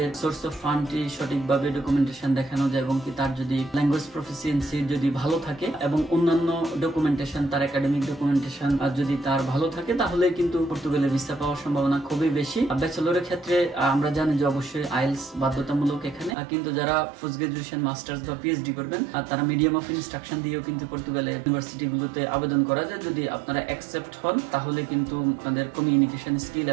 সোর্স অফ ফান্ডটি সঠিকভাবে ডকুমেন্টেশন দেখানো যায় এবং কি তার যদি ল্যাঙ্গুয়েজ প্রফিসিয়েন্সি যদি ভালো থাকে এবং অন্যান্য ডকুমেন্টেশন তার একাডেমিক ডকুমেন্টেশন যদি তার ভালো থাকে, তাহলে কিন্তু পর্তুগালে ভিসা পাওয়ার সম্ভাবনা খুবই বেশি। ব্যাচেলরের ক্ষেত্রে আমরা জানি যে অবশ্যই আইএলটিএস বাধ্যতামূলক এখানে, কিন্তু যারা পোস্ট গ্রাজুয়েশন মাস্টার্স বা পিএইচডি করবেন তারা মিডিয়াম অফ ইনস্ট্রাকশন দিয়েও কিন্তু পর্তুগালের ইউনিভার্সিটি গুলোতে আবেদন করা যায়। যদি আপনারা অ্যাকসেপ্ট হন তাহলে কিন্তু আপনাদের কমিউনিকেশন স্কিল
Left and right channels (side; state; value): left; drops out; at 16.4 s